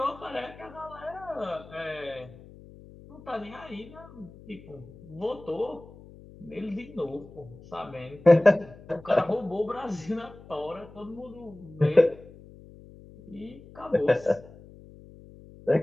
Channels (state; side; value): noise; left; hum, 20 dB below the sound